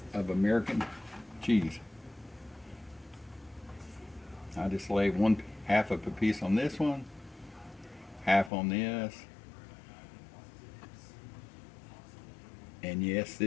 of American cheese. I just lay 1/2 of a piece on this one, half on this. And yes,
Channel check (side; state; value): right; drops out; at 8.5 s